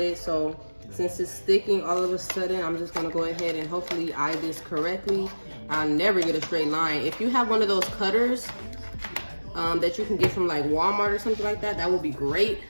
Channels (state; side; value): inverted; both; correlation -1.00